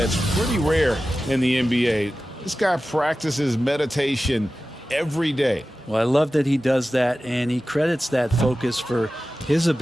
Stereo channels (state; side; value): normal; both; correlation 0.95